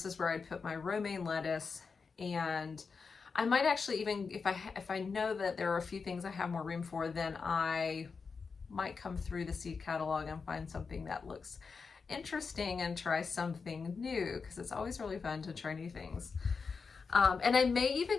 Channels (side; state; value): right; quieter; 5.1 dB